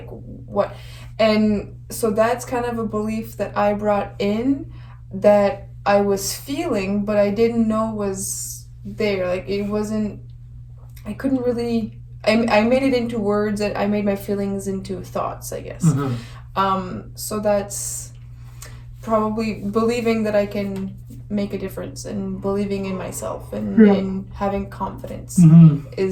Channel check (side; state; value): both; identical; correlation 1.00